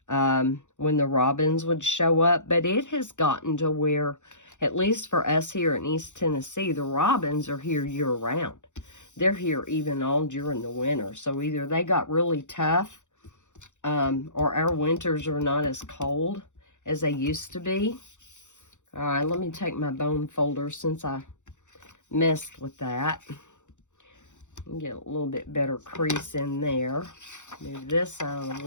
When the robins would show up. But it has gotten to where, at least for us here in East Tennessee, the robins are here year-round. They're here even all during the winter. So either they got really tough, or our winters are not as cold as they used to be. All right, let me take my bone folder since I messed with that. Get a little bit better crease in there. Move this out of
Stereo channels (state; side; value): late; right; 0.85 ms